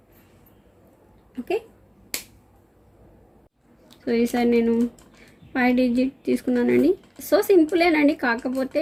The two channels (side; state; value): both; identical; correlation 1.00